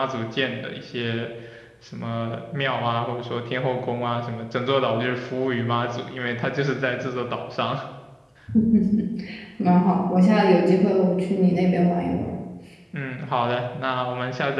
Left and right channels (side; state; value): both; identical; correlation 1.00